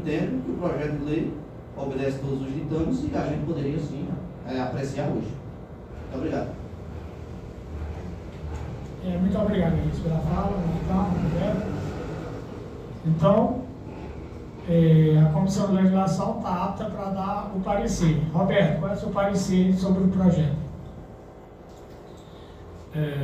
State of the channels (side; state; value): both; identical; correlation 1.00